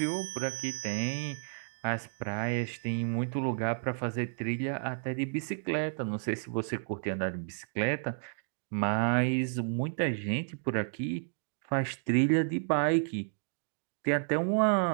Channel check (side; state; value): left; silent; digital silence